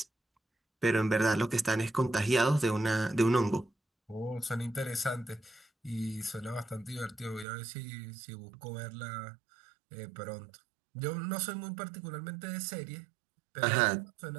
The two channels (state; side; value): drops out; left; at 7.5 s